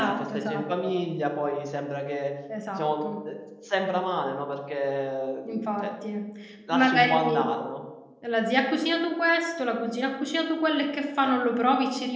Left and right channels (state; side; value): identical; both; correlation 1.00